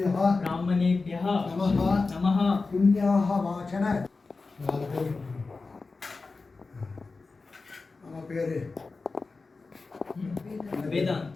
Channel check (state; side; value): quieter; right; 4.0 dB